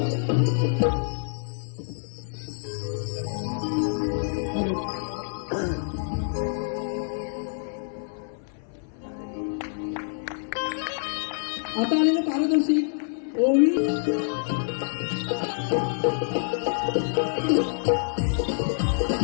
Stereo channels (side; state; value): right; silent; 55 dB below the other